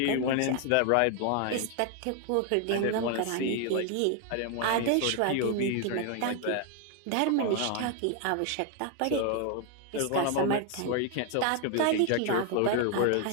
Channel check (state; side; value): different; both; correlation 0.00